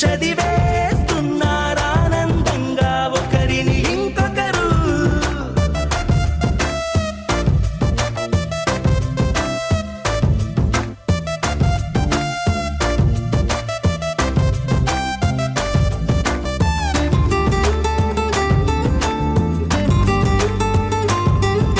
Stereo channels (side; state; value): both; identical; correlation 1.00